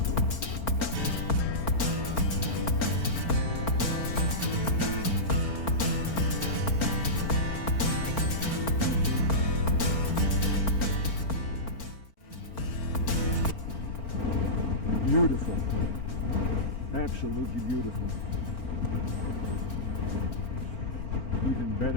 Beautiful, absolutely beautiful. Even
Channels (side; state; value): right; late; 4.4 ms